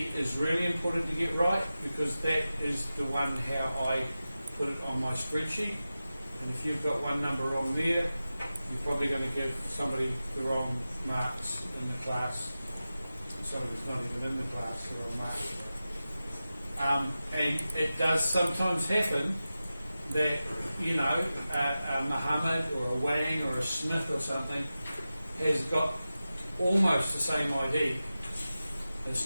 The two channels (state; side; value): inverted; both; correlation -0.94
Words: is really important to get right, because that is the one how I put it on my spreadsheet. And if you've got one number wrong there, you're probably going to give somebody the wrong marks in the class. Somebody's not even in the class, the wrong marks. And it does sometimes happen that, you know, a Muhammad or a Wang or a Smith or something has got almost the same ID.